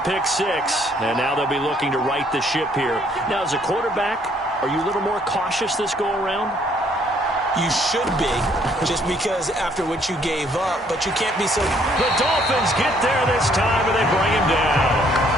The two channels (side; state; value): both; normal; correlation 0.65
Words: 6, and now they'll be looking to right the ship here. Now, as a quarterback, are you a little more cautious this go-around? You should be, just because after what you gave up, but you can't be so... The Dolphins get there this time, and they bring him down.